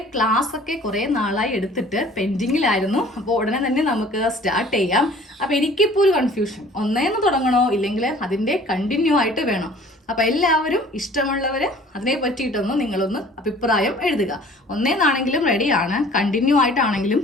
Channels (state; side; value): normal; both; correlation 0.50